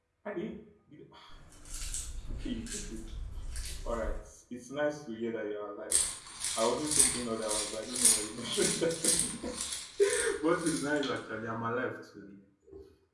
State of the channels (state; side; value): identical; both; correlation 1.00